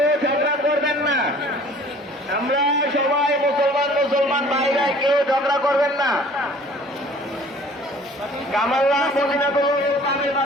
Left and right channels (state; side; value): normal; both; correlation 0.51